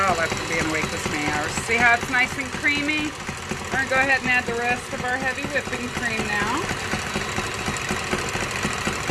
after being awake this many hours. See how it's nice and creamy? We're going to go ahead and add the rest of our heavy whipping cream now.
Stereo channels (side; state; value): both; identical; correlation 1.00